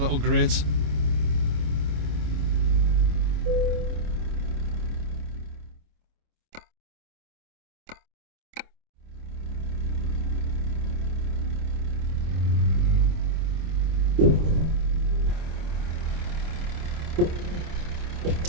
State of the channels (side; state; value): left; late; 26 ms